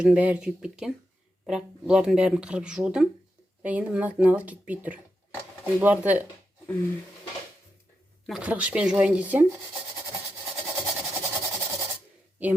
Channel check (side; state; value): both; normal; correlation 0.86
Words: бәрі күйіп кеткен. Бірақ бұлардың бәрін қырып жудым. Енді мыналар кетпей тұр. Бұларды мына қырғышпен жуайын десем,